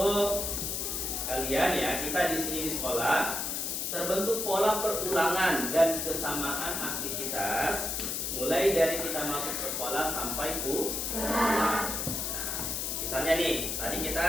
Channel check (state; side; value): noise; left; hiss, 2 dB below the sound